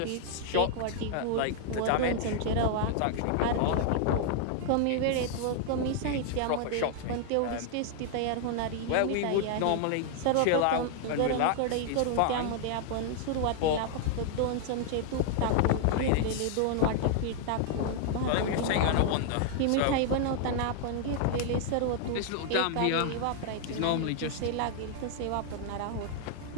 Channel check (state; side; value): different; both; correlation 0.00